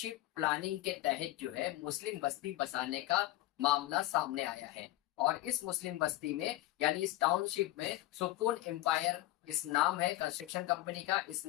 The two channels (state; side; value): quieter; right; 16.6 dB